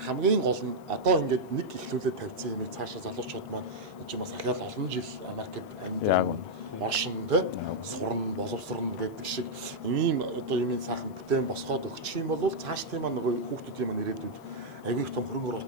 хамгийн гол нь одоо ингээд нэг ихлүүлээд тавьсан юм цаашаа залуучууд маань энэ чинь бас ахяал олон жил Америкт амьдарсан оршин тэ сурна боловсрон гэдэг шиг ийм одоо юм сайхан бүтээн босгоод өгчих юм бол цааш тийм нөгөө хүүхдүүдийн маань ирээдүйд аягүй их том хөрөнгө оруулалт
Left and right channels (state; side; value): noise; left; hiss, 30 dB below the sound